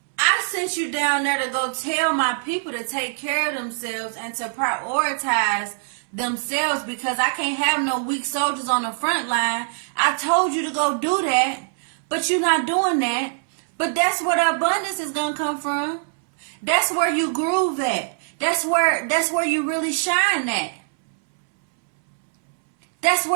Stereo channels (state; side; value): silent; left; 64 dB below the other